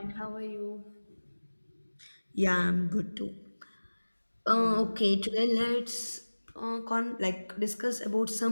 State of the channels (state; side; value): inverted; both; correlation -1.00